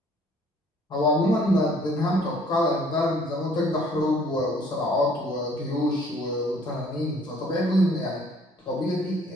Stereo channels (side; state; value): both; normal; correlation 0.58